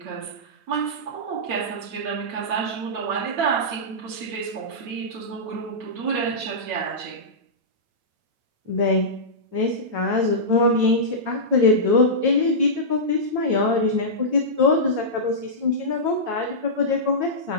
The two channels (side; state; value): left; late; 9.0 ms